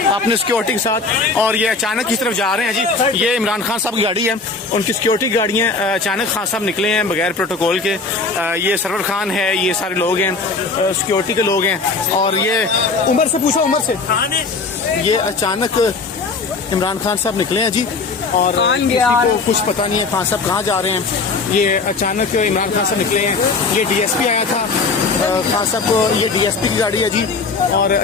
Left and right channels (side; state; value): right; quieter; 4.2 dB